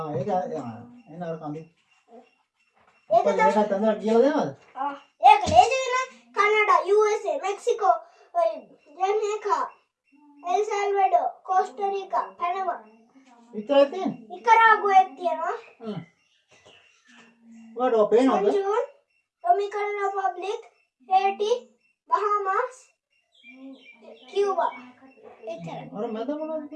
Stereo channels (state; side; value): identical; both; correlation 1.00